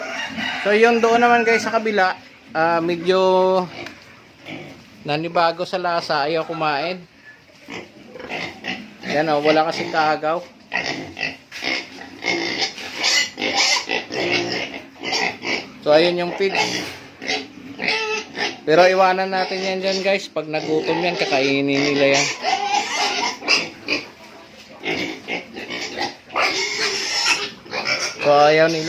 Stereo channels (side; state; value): both; identical; correlation 1.00